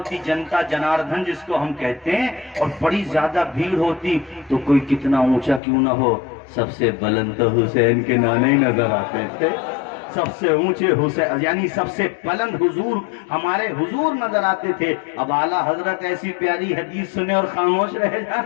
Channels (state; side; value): drops out; right; at 5.6 s